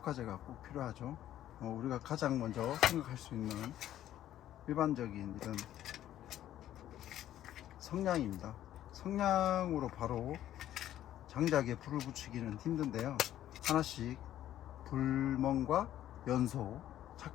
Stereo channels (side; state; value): right; quieter; 12.3 dB